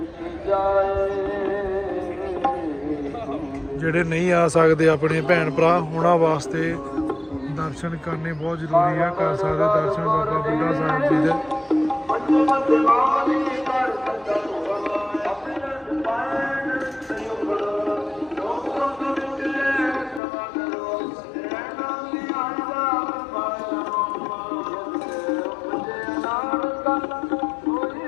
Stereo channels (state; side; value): drops out; right; at 20.2 s